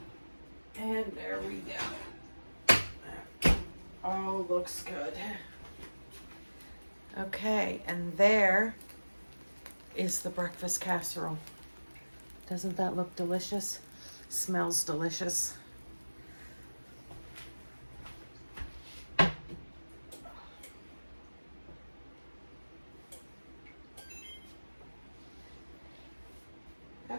And there we go. Oh, looks good. Okay, and there is the breakfast casserole. Doesn't that look delicious? Smells delicious.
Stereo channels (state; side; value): inverted; both; correlation -1.00